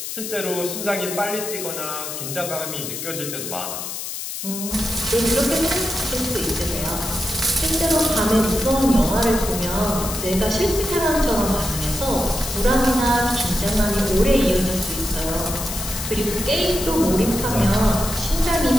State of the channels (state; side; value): noise; left; hiss, 6 dB below the sound